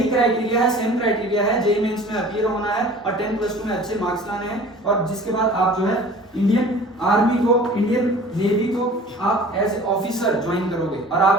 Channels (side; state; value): both; normal; correlation 0.44